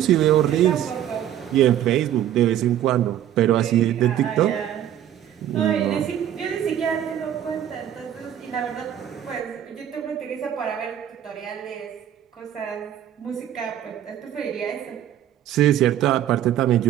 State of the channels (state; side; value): quieter; left; 11.1 dB